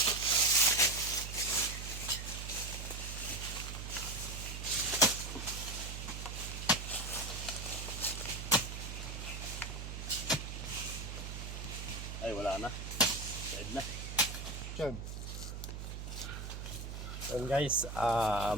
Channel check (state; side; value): noise; right; hum, 7 dB below the sound